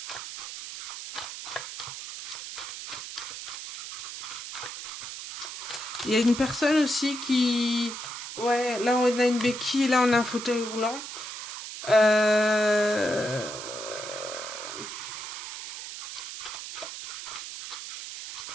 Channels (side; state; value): right; noise; hiss, 8 dB below the sound